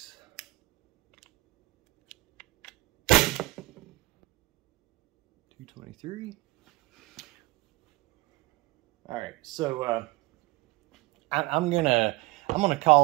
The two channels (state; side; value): quieter; left; 20.7 dB